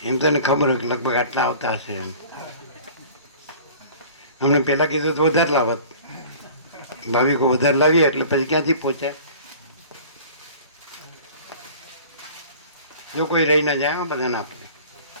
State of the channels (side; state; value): both; inverted; correlation -0.44